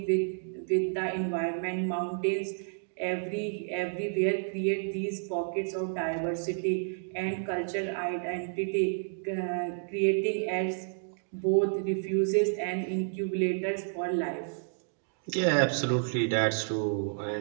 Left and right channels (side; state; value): left; silent; digital silence